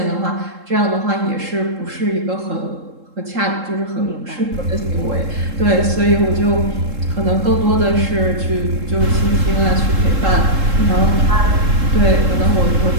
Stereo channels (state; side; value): late; left; 3.7 ms